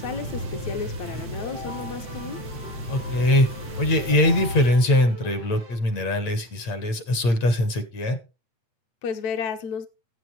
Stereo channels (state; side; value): late; right; 8.6 ms